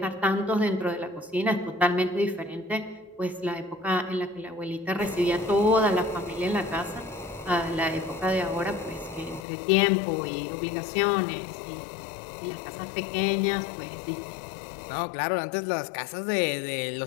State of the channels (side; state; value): right; drops out; at 9.4 s